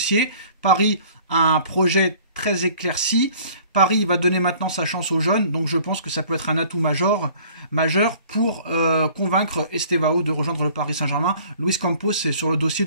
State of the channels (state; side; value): inverted; both; correlation -0.53